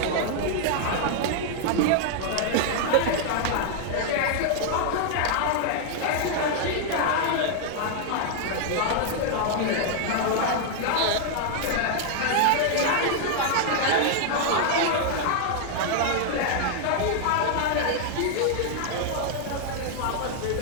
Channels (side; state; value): both; different; correlation 0.00